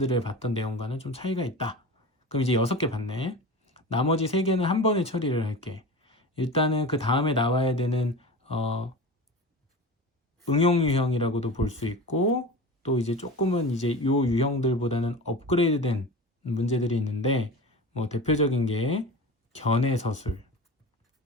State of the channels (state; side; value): normal; both; correlation 0.31